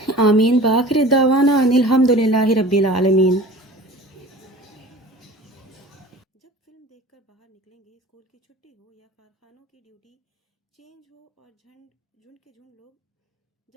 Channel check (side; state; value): both; normal; correlation 0.42